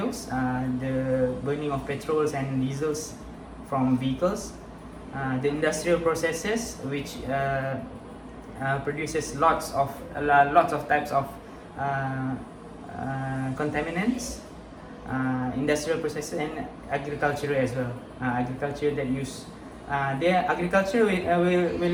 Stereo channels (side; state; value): both; identical; correlation 1.00